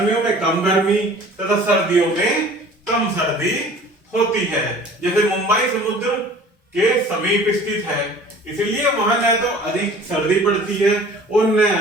में कम गर्मी तथा सर्दियों में कम सर्दी होती है। जैसे मुंबई समुद्र के समीप स्थित है, इसलिए वहां न तो अधिक सर्दी पड़ती है और न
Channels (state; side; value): normal; both; correlation 0.47